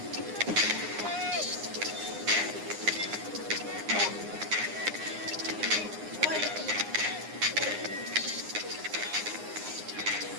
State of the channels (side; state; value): left; late; 9.7 ms